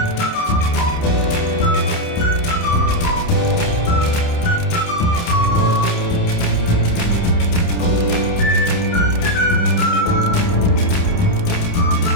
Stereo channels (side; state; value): right; late; 28 ms